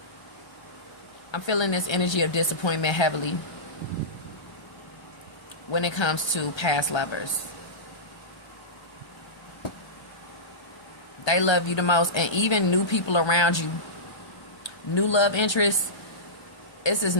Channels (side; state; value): right; late; 1.3 ms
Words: I'm feeling this energy of disappointment heavily when it comes to past lovers. They love you the most, and even new people around you, new love interests, this is